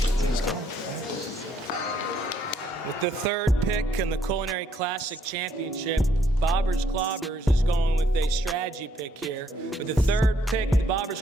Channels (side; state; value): both; normal; correlation 0.69